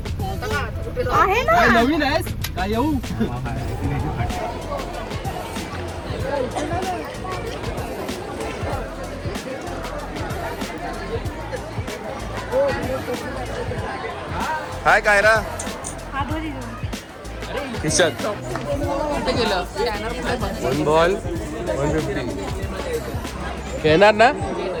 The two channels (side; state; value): both; identical; correlation 1.00